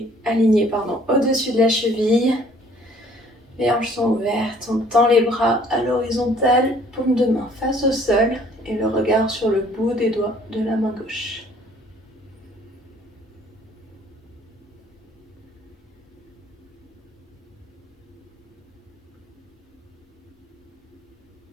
aligné au-dessus de la cheville. Les hanches sont ouvertes, on tend les bras à l'horizontale, paume de main face au sol et le regard sur le bout des doigts de la main gauche.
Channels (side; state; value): both; normal; correlation 0.57